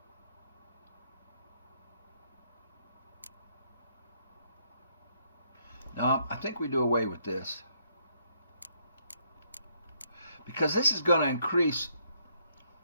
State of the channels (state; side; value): inverted; both; correlation -0.72